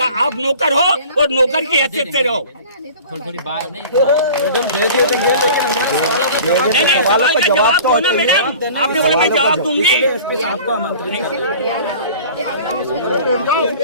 आप नौकर हो और नौकर की हैसियत से रहो। थोड़ी बात नहीं, नहीं, सवाल का जवाब दो ना मैडम। आपने बोला मैं जवाब दूंगी।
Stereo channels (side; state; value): both; inverted; correlation -0.43